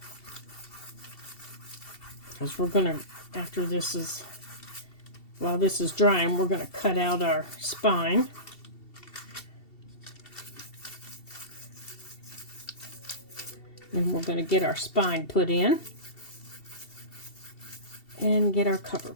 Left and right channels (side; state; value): right; late; 2.7 ms